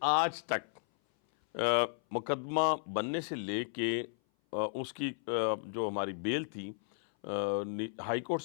آج تک مقدمہ بننے سے لے کے اس کی جو ہماری بیل تھی، ہائی کورٹ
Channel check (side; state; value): right; silent; 55 dB below the other